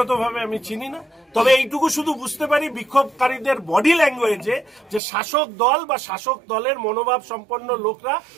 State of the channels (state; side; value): drops out; left; at 5.0 s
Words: আমি চিনি না, তবে এইটুকু শুধু বুঝতে পারি বিক্ষোভকারীদের বডি ল্যাঙ্গুয়েজে যে শাসক দল বা শাসক দলের মনোভাব সম্পন্ন লোকরা